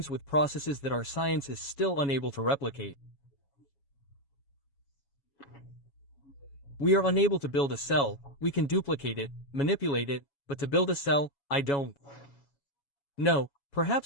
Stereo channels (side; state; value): right; late; 7.2 ms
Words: with processes that our science is still unable to replicate. We are unable to build a cell, we can duplicate it, manipulate it, but to build a cell, I don't. No,